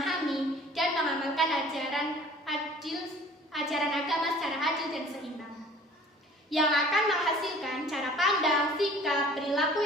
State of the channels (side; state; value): both; normal; correlation 0.49